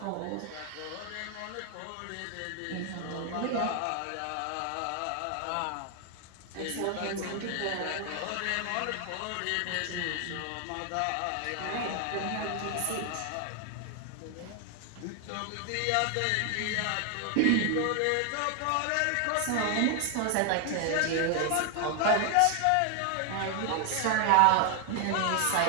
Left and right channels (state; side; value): different; both; correlation 0.00